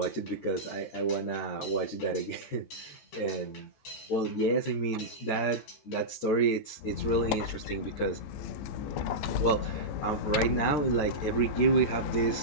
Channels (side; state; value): right; late; 13 ms